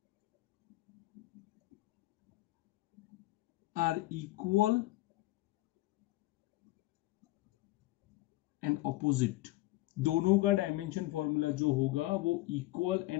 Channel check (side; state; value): right; quieter; 18.2 dB